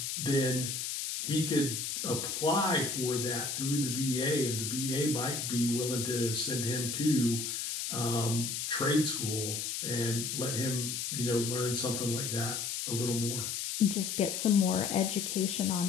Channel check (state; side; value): noise; left; hiss, 3 dB below the sound